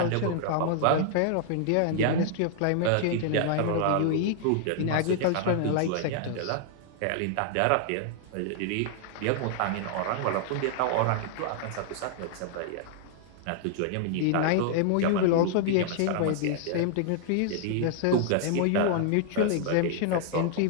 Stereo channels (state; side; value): different; both; correlation -0.01